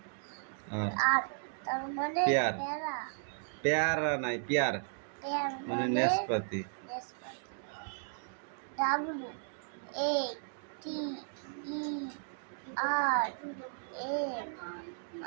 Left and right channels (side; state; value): left; silent; digital silence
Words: আর আর তার মানে পেয়ার। পেয়ারা পেয়ারা নাই, পেয়ার পেয়ার মানে নেসপাতি। W A T E R A